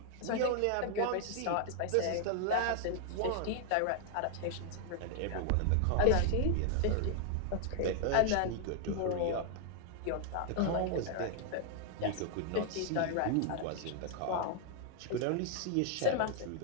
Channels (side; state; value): both; different; correlation 0.00